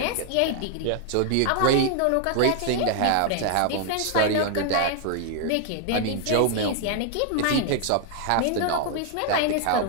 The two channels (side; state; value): both; different; correlation 0.00